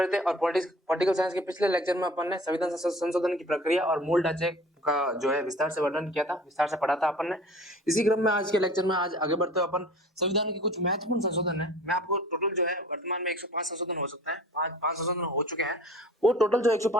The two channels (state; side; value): normal; both; correlation 0.45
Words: थे और पॉलिटिकल साइंस के पिछले लेक्चर में अपन ने संविधान संशोधन की प्रक्रिया और मूल ढांचे का जो है विस्तार से वर्णन किया था, विस्तार से पढ़ा था अपन ने। इसी क्रम में आज के लेक्चर में आज आगे बढ़ते हुए अपन संविधान के कुछ महत्वपूर्ण संशोधन है। मैं आपको टोटल जो है वर्तमान में 105 संशोधन हो सकता है, पांच संशोधन हो चुके हैं। वो टोटल जो